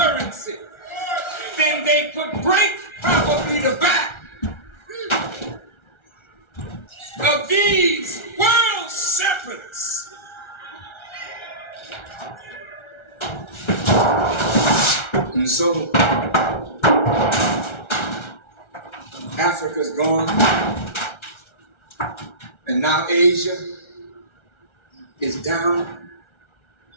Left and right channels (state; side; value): late; right; 1.3 ms